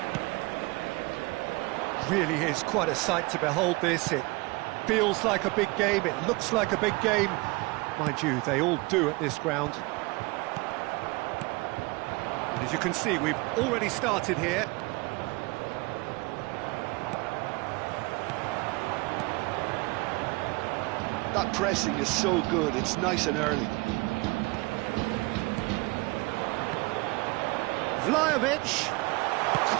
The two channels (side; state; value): left; quieter; 25.2 dB